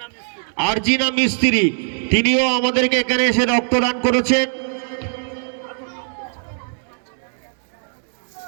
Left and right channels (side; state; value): left; silent; digital silence